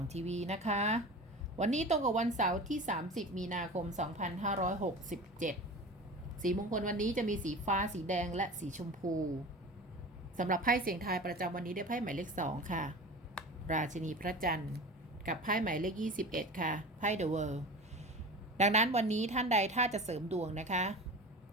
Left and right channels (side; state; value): both; normal; correlation 0.34